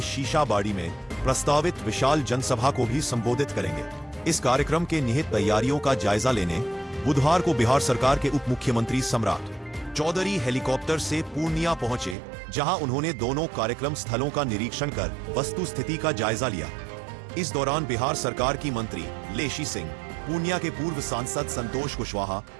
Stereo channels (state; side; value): drops out; left; at 12.2 s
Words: शीशाबाड़ी में प्रस्तावित विशाल जनसभा को भी संबोधित करेंगे। इस कार्यक्रम के निहित तैयारियों का जायजा लेने बुधवार को बिहार सरकार के उप मुख्यमंत्री सम्राट चौधरी हेलीकॉप्टर से पूर्णिया पहुंचे, जहां उन्होंने दोनों कार्यक्रम स्थलों का निरीक्षण कर वस्तु स्थिति का जायजा लिया। इस दौरान बिहार सरकार की मंत्री लेशी सिंह, पूर्णिया के पूर्व सांसद संतोष कुशवाहा,